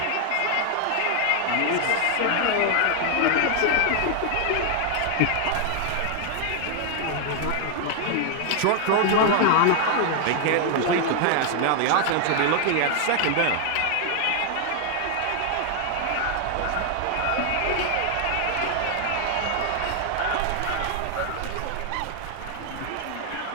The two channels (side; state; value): both; different; correlation 0.00